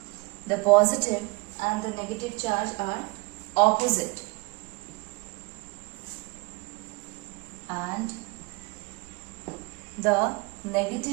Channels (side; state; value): left; quieter; 26.5 dB